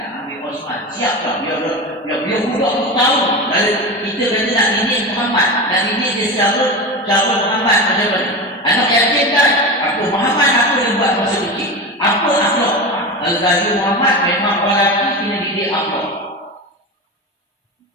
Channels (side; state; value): both; normal; correlation 0.24